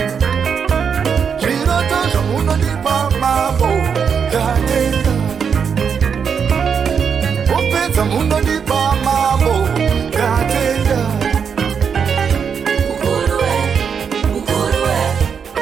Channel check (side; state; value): left; quieter; 6.7 dB